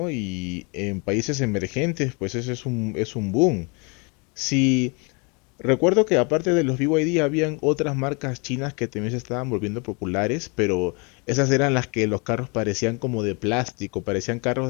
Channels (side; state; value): right; quieter; 31.9 dB